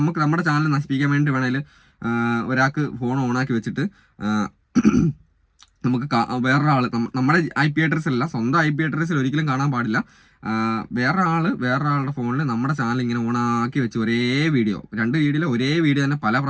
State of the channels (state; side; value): identical; both; correlation 1.00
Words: ചാനൽ നശിപ്പിക്കാൻ വേണ്ടി വേണമെങ്കിൽ ഒരാൾക്ക് ഫോൺ ഓണാക്കി വെച്ചിട്ട് നമുക്ക് വേറൊരാൾ നമ്മുടെ IP അഡ്രസ്സിലല്ല, സ്വന്തം IP അഡ്രസ്സിൽ ഒരിക്കലും കാണാൻ പാടില്ല. വേറൊരാളുടെ ഫോണിൽ നമ്മുടെ ചാനൽ ഇങ്ങനെ ഓണാക്കി വെച്ച് ഒരേ വീഡിയോ, 2 വീഡിയോയിൽ ഒരേ വീഡിയോ തന്നെ പല